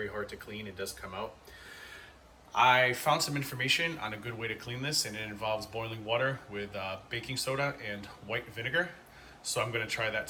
hard to clean. It does come out. I found some information on a good way to clean this, and it involves boiling water with baking soda and white vinegar. So I'm going to try that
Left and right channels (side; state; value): both; identical; correlation 1.00